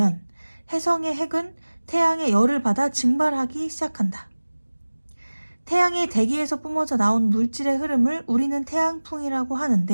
해성의 핵은 태양의 열을 받아 증발하기 시작한다. 태양의 대기에서 뿜어져 나온 물질의 흐름을 우리는 태양풍이라고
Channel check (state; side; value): inverted; both; correlation -1.00